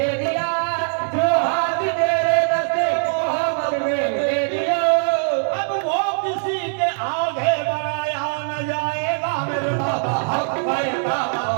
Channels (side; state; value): left; silent; digital silence